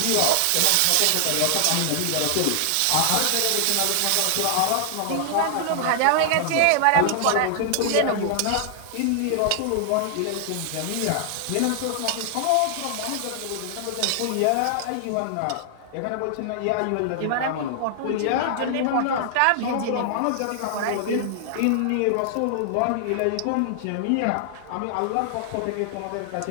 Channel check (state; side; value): different; both; correlation 0.00